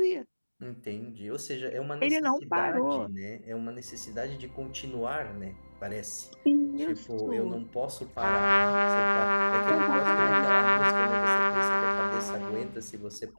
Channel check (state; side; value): inverted; both; correlation -1.00